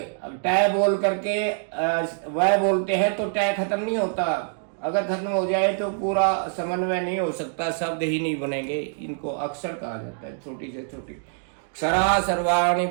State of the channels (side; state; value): left; silent; digital silence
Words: टै बोल करके वह बोलते हैं तो टै खत्म नहीं होता। अगर खत्म हो जाए तो पूरा समन्वय नहीं हो सकता, शब्द ही नहीं बनेंगे। इनको अक्षर कहा जाता है, छोटी से छोटी। क्षरा सर्वाणि